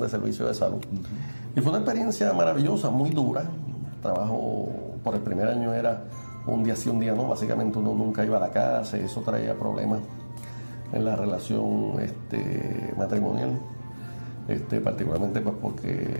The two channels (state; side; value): inverted; both; correlation -1.00